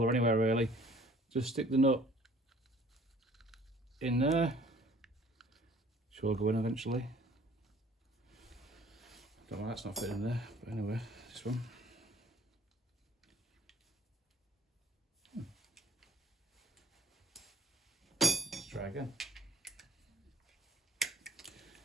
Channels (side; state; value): both; normal; correlation 0.53